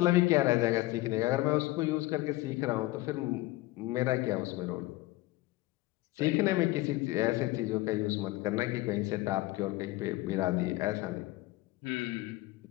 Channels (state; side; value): quieter; right; 18.9 dB